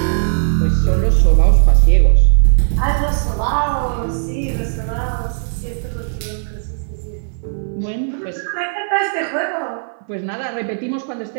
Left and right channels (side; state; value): left; silent; 57 dB below the other